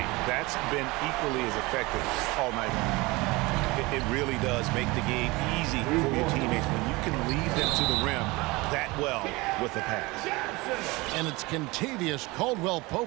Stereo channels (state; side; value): quieter; left; 23.0 dB